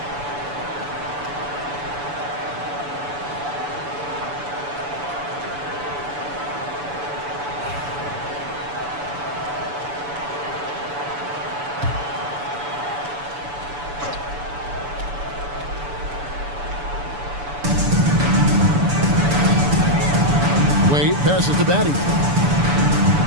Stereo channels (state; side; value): late; left; 7.0 ms